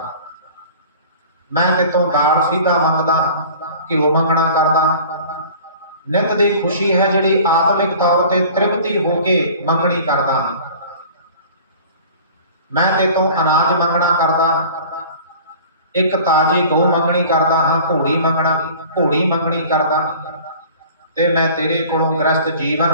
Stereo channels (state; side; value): inverted; both; correlation -0.44